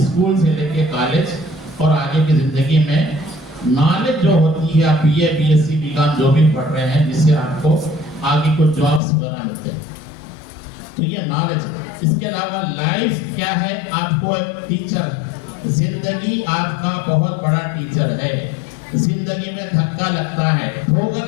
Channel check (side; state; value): right; drops out; at 9.0 s